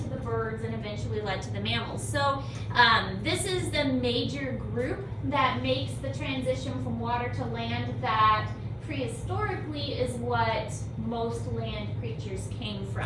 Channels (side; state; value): both; identical; correlation 1.00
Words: the birds, and eventually led to the mammals. So this is the major group that makes the transition from water to land that prehistorically is what most land creatures came